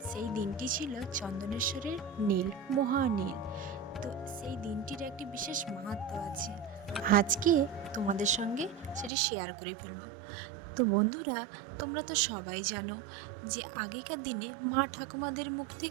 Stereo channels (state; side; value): drops out; left; at 9.1 s